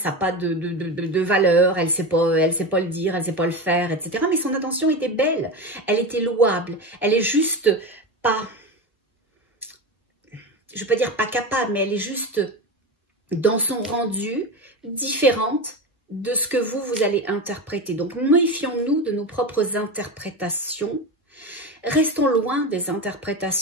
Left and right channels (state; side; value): normal; both; correlation 0.22